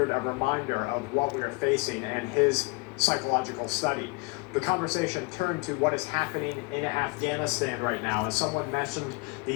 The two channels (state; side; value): quieter; right; 27.5 dB